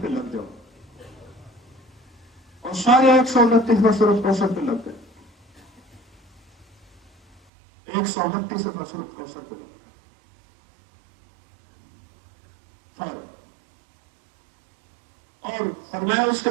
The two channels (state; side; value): drops out; left; at 7.4 s